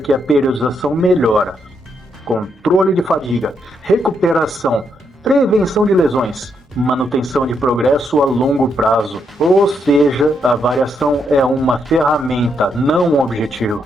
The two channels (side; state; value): both; normal; correlation 0.78